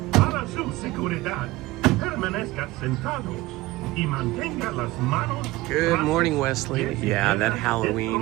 Para su seguridad, permanezca sentados y mantenga las manos. Good morning, Wesley. Yeah, that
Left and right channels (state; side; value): quieter; left; 19.1 dB